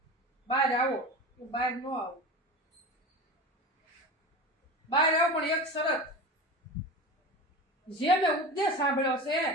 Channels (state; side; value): normal; both; correlation 0.30